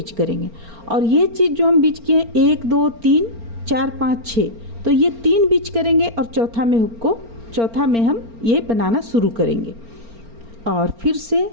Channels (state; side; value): late; left; 4.4 ms